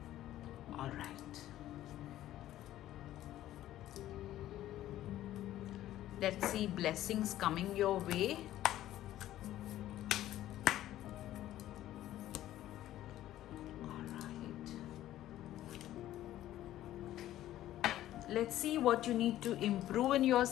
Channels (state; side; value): quieter; right; 13.6 dB